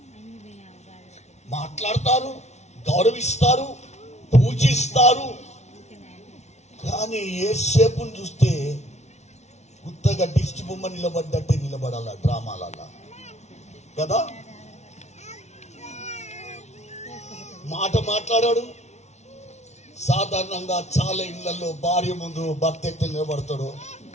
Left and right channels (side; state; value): right; late; 0.32 ms